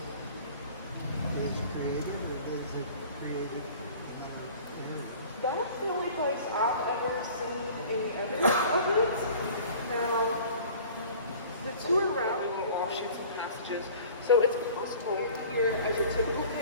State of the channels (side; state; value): both; inverted; correlation -0.45